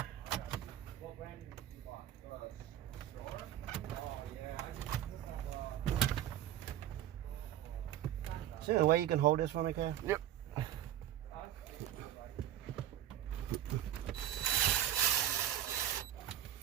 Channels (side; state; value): left; quieter; 11.8 dB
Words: What brand did you buy? Store? Oh, yeah. Is there a way you can hold this for me, Kev? Yep.